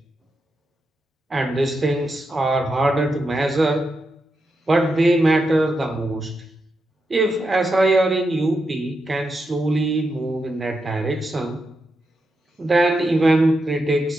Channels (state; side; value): normal; both; correlation 0.86